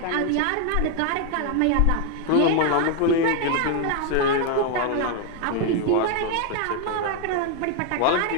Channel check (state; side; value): different; both; correlation 0.00